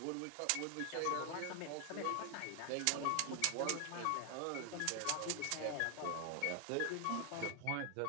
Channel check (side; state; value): both; different; correlation 0.00